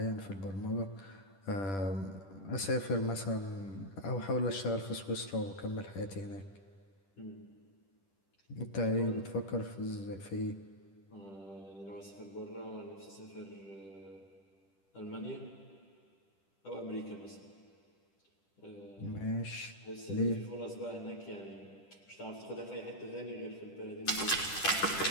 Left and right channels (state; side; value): late; right; 10 ms